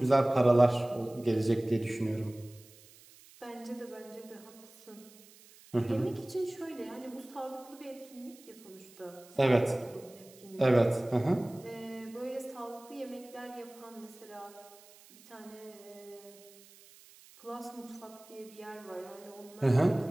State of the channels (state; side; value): noise; right; hiss, 23 dB below the sound